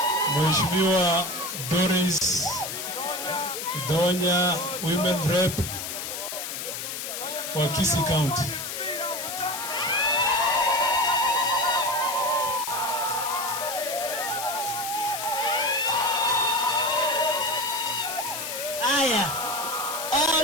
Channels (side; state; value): left; noise; hiss, 6 dB below the sound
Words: Mheshimiwa Doris Donya, Women Rep wa Kisii County. Aya,